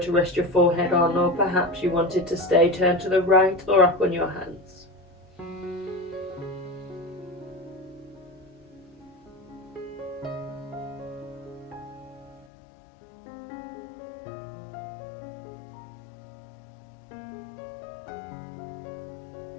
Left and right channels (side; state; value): right; drops out; at 12.5 s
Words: rest your forehead on, or perhaps you wanted to stay turned to the right or up on your hands.